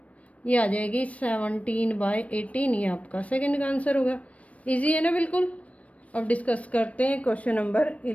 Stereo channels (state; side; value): late; right; 0.065 ms